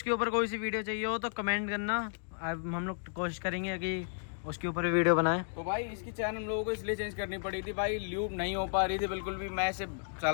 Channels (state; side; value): silent; right; digital silence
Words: ऊपर कोई सी वीडियो चाहिए हो तो कमेंट करना, हम लोग कोशिश करेंगे कि उसके ऊपर भी वीडियो बनाएं। तो भाई इसकी चैन हम लोगों को इसलिए चेंज करनी पड़ी थी भाई, ल्यूब नहीं हो पा रही थी बिल्कुल भी। मैं इसे